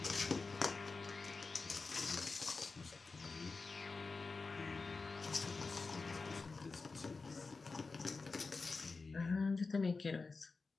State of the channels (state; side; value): quieter; right; 4.1 dB